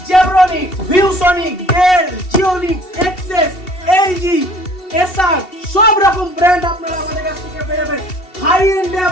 জেব্রনিক্স, ভিউসনিক, ডেল, জিওনিক্স, এক্সেস, এলজি, এসআর সব রকম ব্র্যান্ড আপনারা আমাদের কাছ থেকে পেয়ে যাবেন। হাই এন্ডে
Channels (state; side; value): late; right; 2.7 ms